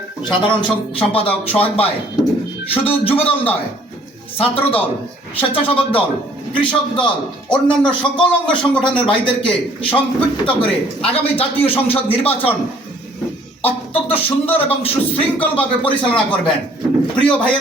সাধারণ সম্পাদক সোহাগ ভাই, শুধু যুবদল নয়, ছাত্রদল, স্বেচ্ছাসেবক দল, কৃষক দল, অন্যান্য সকল অঙ্গ সংগঠনের ভাইদেরকে সম্পৃক্ত করে আগামী জাতীয় সংসদ নির্বাচন অত্যন্ত সুন্দর এবং সুশৃঙ্খলভাবে পরিচালনা করবেন। প্রিয়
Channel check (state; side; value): normal; both; correlation 0.59